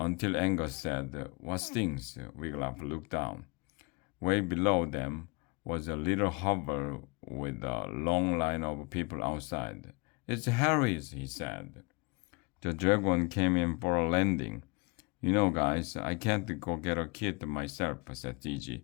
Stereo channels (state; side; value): quieter; right; 29.5 dB